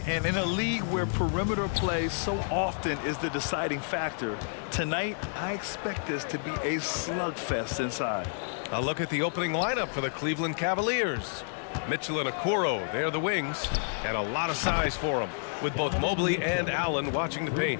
and in a league where perimeter play so often is the deciding factor, tonight I expect this to be a slugfest inside. A look at the opening lineup for the Cleveland Cavaliers. Mitchell and Okoro, they're the wings, and a lot of size for them, with both Mobley and Allen watching the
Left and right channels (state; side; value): silent; right; digital silence